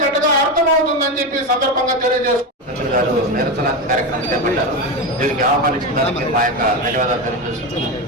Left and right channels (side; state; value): both; normal; correlation 0.16